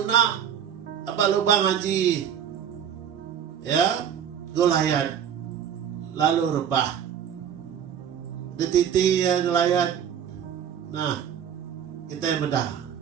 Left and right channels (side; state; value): left; quieter; 8.8 dB